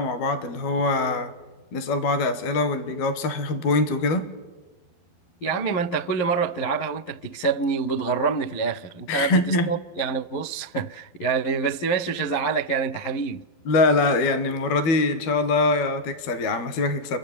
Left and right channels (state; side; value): late; right; 12 ms